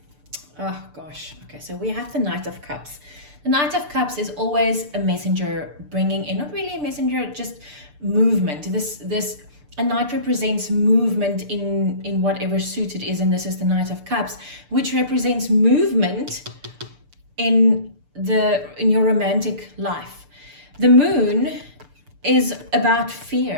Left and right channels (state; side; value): late; left; 6.8 ms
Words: oh gosh, okay, so we have the Knight of Cups. The Knight of Cups is always a messenger bringing in, not really a messenger, just movement. A knight represents movement in whatever suit it is, and this is the Knight of Cups, which represents movement in your romantic life. The moon is about